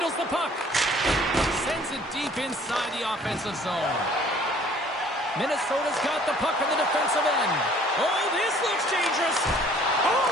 the puck. Sends it deep inside the offensive zone. Minnesota's got the puck in the defensive end. Oh, this looks dangerous. Oh,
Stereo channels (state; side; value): normal; both; correlation 0.55